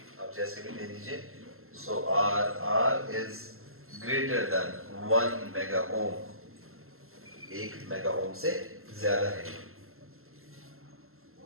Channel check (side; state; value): left; late; 0.62 ms